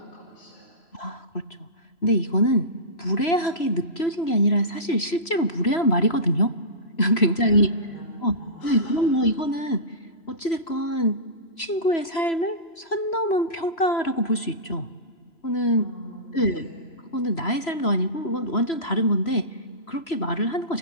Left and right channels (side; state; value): right; late; 3.0 ms